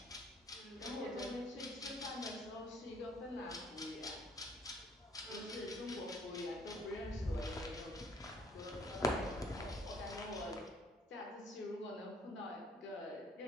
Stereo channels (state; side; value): normal; both; correlation 0.62